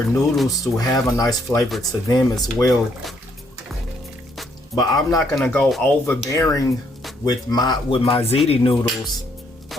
noodles to have a nice flavor to them as well. But I'm not gonna go overbearing with my ziti noodles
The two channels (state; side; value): normal; both; correlation 0.71